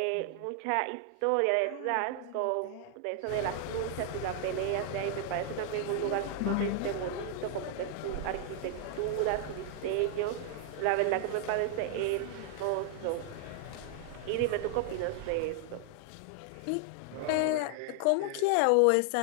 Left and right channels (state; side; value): different; both; correlation 0.00